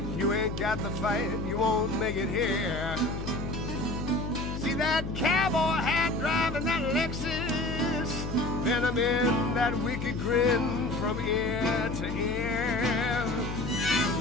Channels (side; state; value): left; noise; hum, 6 dB below the sound